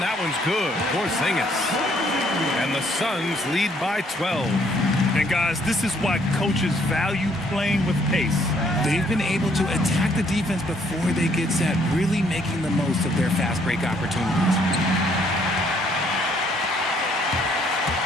that one's good. Porzingis. And the Suns lead by 12. And guys, this is why coaches value playing with pace. They've been able to attack the defense before they get set, really making the most of their fast break opportunities.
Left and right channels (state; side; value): normal; both; correlation 0.66